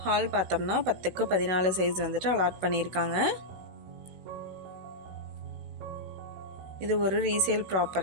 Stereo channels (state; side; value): late; left; 16 ms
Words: ஹால் பார்த்தோம்னா 10க்கு 14 சைஸ் வந்துட்டு அலாட் பண்ணியிருக்காங்க. இது ஒரு ரீசேல்